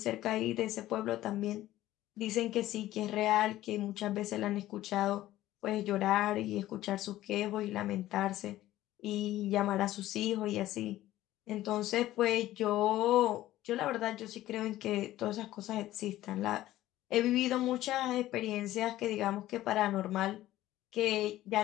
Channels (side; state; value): right; quieter; 14.8 dB